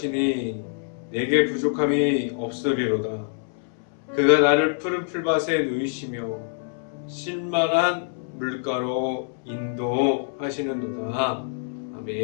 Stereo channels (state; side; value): silent; right; 62 dB below the other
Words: 내게 부족함이 없으리로다. 그가 나를 푸른 풀밭에 누이시며 쉴만한 물가로 인도하시는도다.